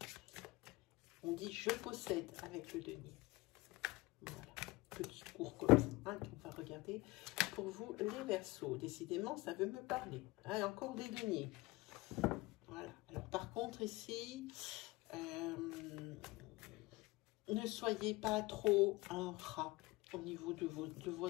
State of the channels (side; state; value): right; quieter; 21.5 dB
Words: On dit « je possède » avec le denier. Voilà, petit cours comme ça, hein, qu'on va regarder pour vous les Verseaux. Décidément, ça veut me parler. Hein, encore des deniers. Voilà. Alors, par contre, ici... ne soyez pas trop un rat au niveau de